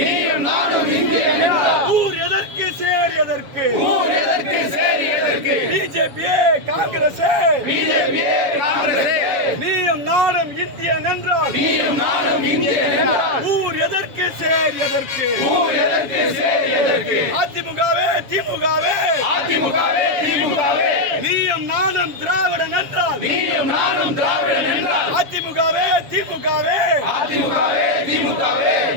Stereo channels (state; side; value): late; left; 7.1 ms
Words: நீயும் நானும் இந்தியன் என்றால் ஊர் எதற்கு சேர் எதற்கு ஊர் எதற்கு சேரி எதற்கு பிஜேபியே காங்கிரஸே பிஜேபியே காங்கிரஸே நீயும் நானும் இந்தியன் என்றால் நீயும் நானும் இந்தியன் என்றால் ஊர் எதற்கு சேர் எதற்கு ஊர் எதற்கு சேரி எதற்கு அதிமுகவே திமுகவே அதிமுகவே திமுகவே நீயும் நானும் திராவிடன் என்றால் நீயும் நானும் திராவிடன் என்றால் அதிமுகவே திமுகவே அதிமுகவே திமுகவே